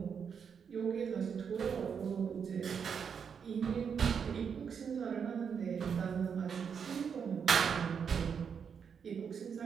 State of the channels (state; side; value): quieter; left; 6.8 dB